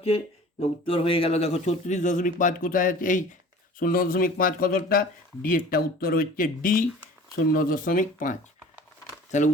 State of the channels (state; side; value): normal; both; correlation 0.44